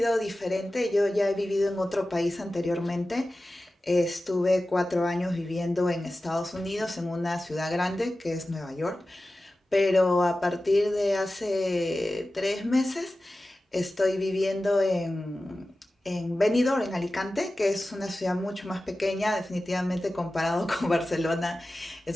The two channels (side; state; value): both; normal; correlation 0.95